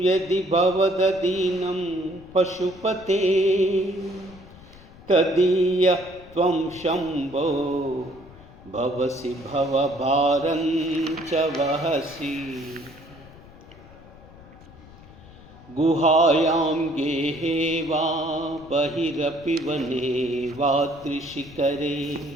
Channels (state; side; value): noise; left; rumble, 21 dB below the sound